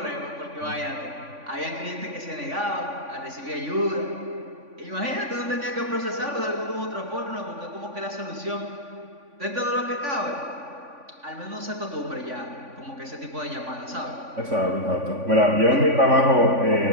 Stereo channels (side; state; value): left; late; 3.5 ms